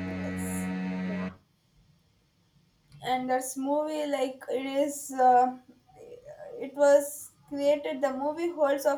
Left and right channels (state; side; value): identical; both; correlation 1.00